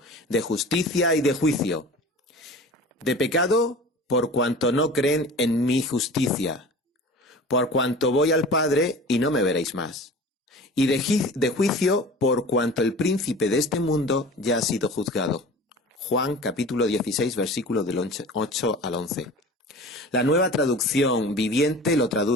de justicia y de juicio. De pecado, por cuanto no creen en mi justicia, por cuanto voy al Padre y no me veréis más. Y de juicio, por cuanto el príncipe de este mundo ya ha sido juzgado. Juan capítulo 16, versículos del 8 al 11. La Nueva Traducción Viviente lo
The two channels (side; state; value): both; normal; correlation 0.39